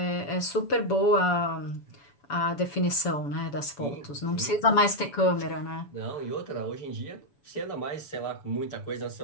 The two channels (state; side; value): late; right; 7.0 ms